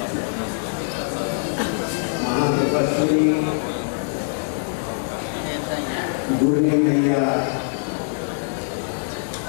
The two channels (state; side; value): silent; right; digital silence